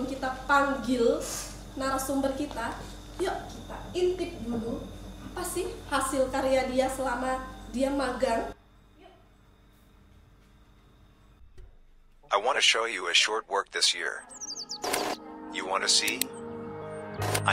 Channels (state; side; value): identical; both; correlation 1.00